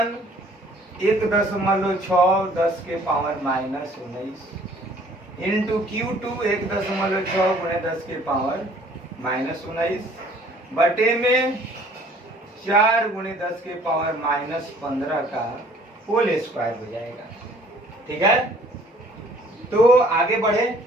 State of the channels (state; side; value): normal; both; correlation 0.56